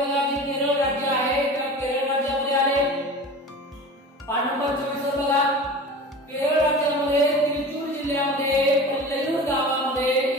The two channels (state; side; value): normal; both; correlation 0.36